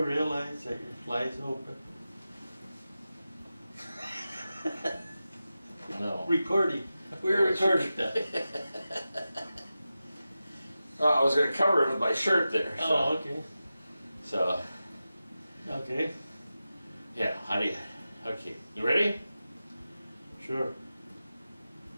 realize that your fly's open? No. Recording. We're recording that. Oh, I was going to cover it with my shirt there. So, Oh, okay. So, Okay. yeah, how do you... Okay, you ready? Sure.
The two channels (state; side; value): inverted; both; correlation -0.93